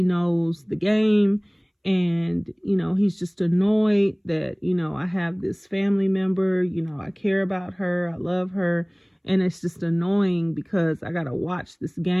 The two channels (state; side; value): identical; both; correlation 1.00